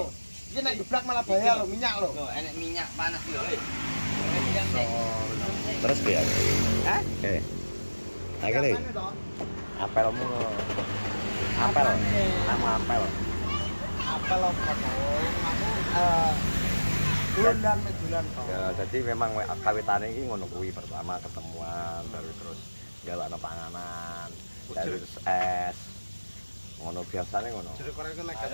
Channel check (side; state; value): both; inverted; correlation -1.00